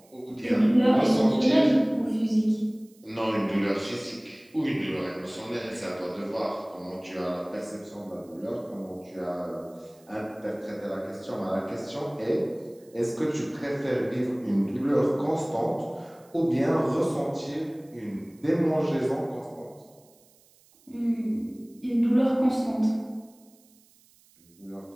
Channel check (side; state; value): right; noise; hiss, 30 dB below the sound